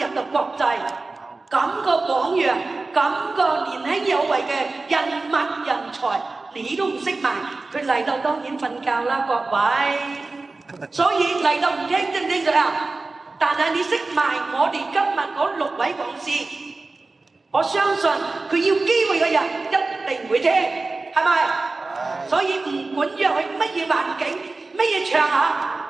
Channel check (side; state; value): left; quieter; 3.5 dB